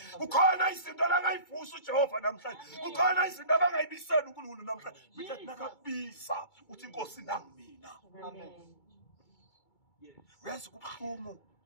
Ukhona izinto la ngayivusa uJehova namhlanje. Ukhona izinto abangayibisela uNkulunkulu namhlanje. Uthi nakabiza uthi inkosi nangimina. Amen. Uyazi kubuhlungu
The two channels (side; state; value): right; late; 2.2 ms